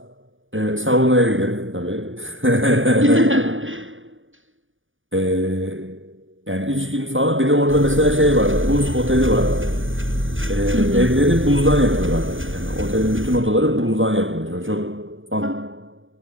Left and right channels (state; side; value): late; left; 0.57 ms